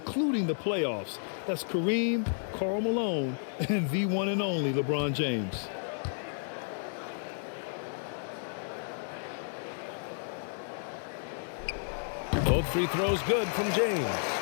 the playoffs. That's Kareem, Karl Malone, and the one and only LeBron James. Both free throws good from James.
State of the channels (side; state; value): right; silent; digital silence